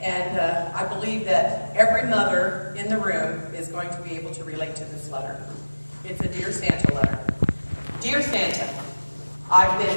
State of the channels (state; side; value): inverted; both; correlation -1.00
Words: I believe that every mother in the room is going to be able to relate to this letter. It's a Dear Santa letter. Dear Santa, I've been